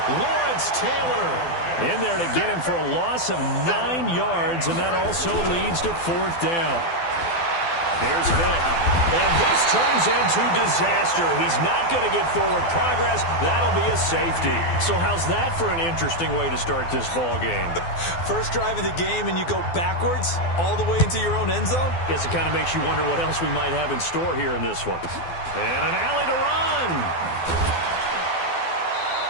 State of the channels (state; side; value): late; right; 12 ms